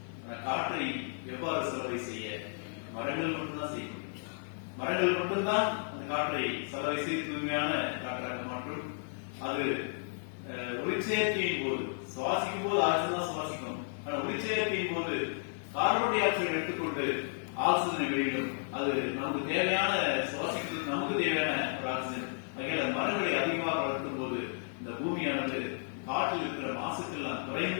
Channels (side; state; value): right; silent; 56 dB below the other